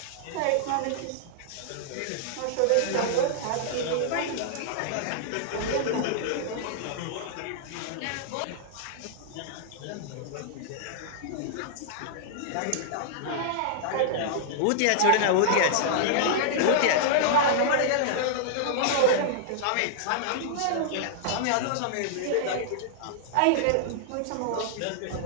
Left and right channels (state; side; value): different; both; correlation -0.01